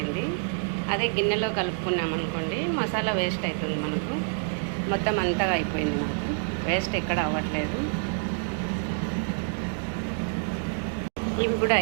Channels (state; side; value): silent; left; 60 dB below the other